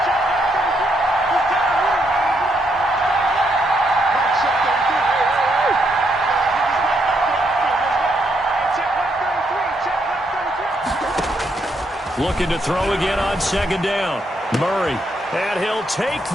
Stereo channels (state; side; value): normal; both; correlation 0.76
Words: Looking to throw again on second down. Murray. And he'll take